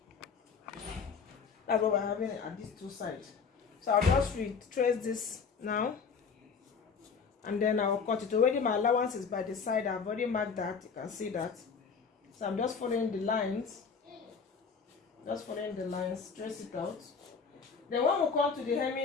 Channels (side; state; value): right; quieter; 5.6 dB